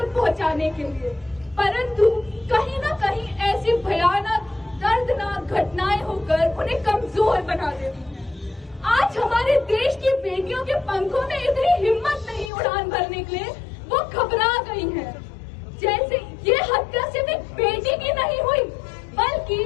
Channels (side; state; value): right; drops out; at 12.5 s